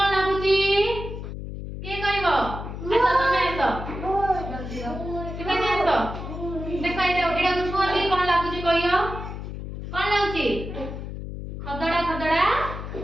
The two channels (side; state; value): left; noise; hum, 8 dB below the sound